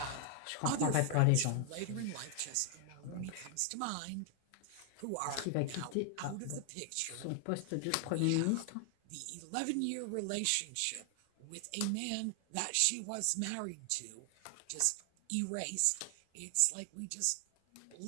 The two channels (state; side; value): different; both; correlation 0.00